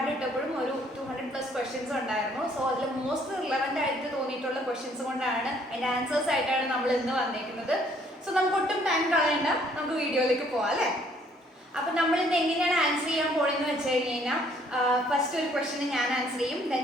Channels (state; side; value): normal; both; correlation 0.63